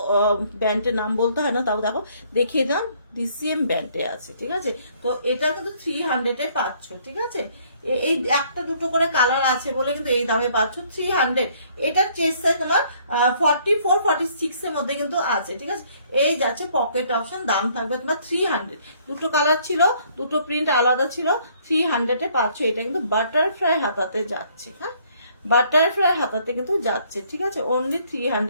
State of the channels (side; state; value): both; inverted; correlation -0.63